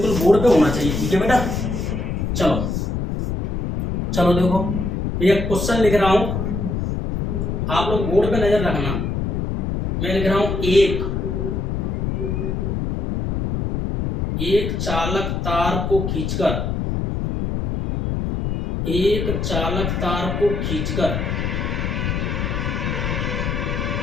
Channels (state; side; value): noise; left; rumble, 1 dB below the sound